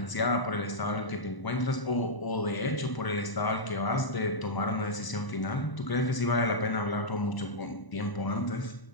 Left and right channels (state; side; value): late; right; 1.0 ms